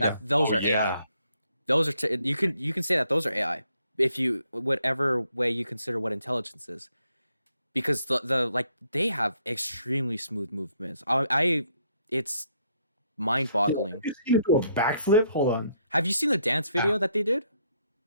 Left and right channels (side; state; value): both; inverted; correlation -0.72